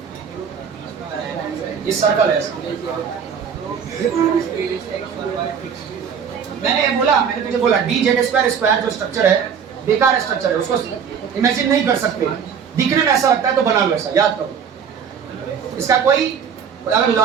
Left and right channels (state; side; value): quieter; left; 7.2 dB